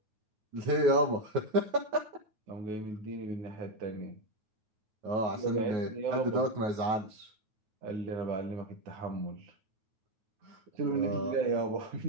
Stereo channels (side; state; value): left; late; 9.3 ms